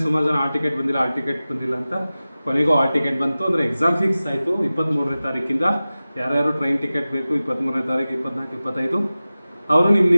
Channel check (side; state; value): both; inverted; correlation -0.96